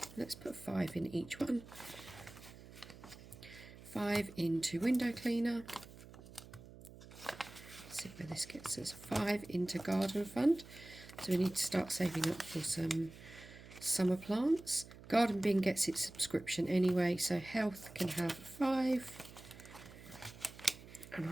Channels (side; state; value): right; noise; hum, 17 dB below the sound